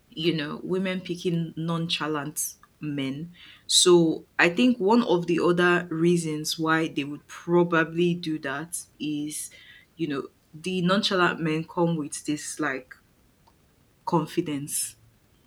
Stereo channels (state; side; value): identical; both; correlation 1.00